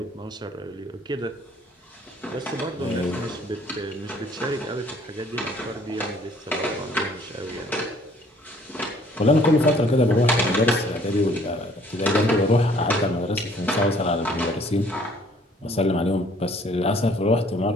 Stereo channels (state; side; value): normal; both; correlation 0.59